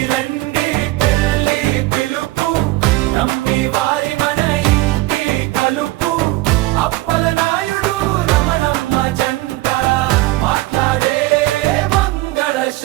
రండి పెళ్ళి పిలుపు నమ్మి వారి మన ఇంటి కలుపు అప్పల నాయుడు రమణమ్మ జంట మాట్లాడే మంగళ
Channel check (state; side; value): quieter; left; 19.0 dB